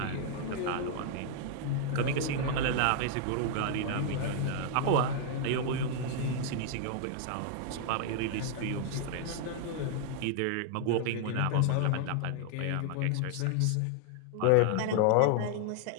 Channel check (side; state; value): both; different; correlation 0.00